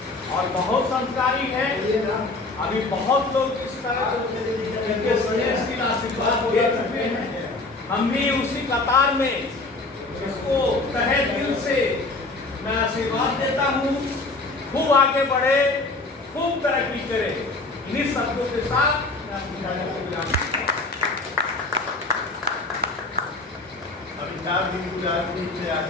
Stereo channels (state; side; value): quieter; right; 3.3 dB